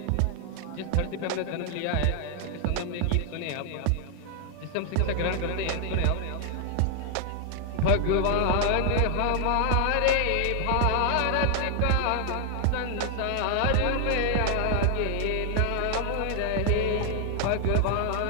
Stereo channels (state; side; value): different; both; correlation 0.00